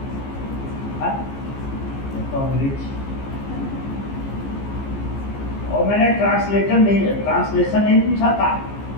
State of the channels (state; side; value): late; right; 15 ms